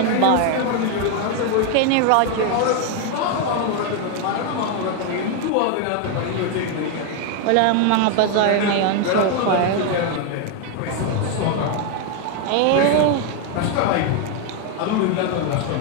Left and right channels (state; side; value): different; both; correlation 0.01